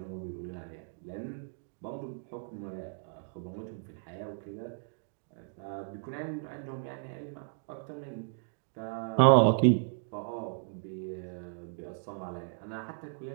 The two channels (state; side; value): silent; left; digital silence